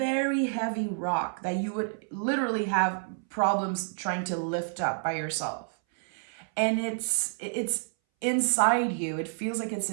heavy rock that you would literally have problems trying to lift up by yourself. And it's inside you. It feels like it's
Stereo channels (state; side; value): silent; left; 59 dB below the other